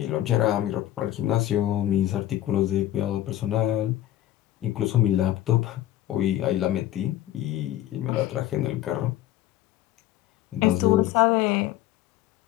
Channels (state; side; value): quieter; right; 13.4 dB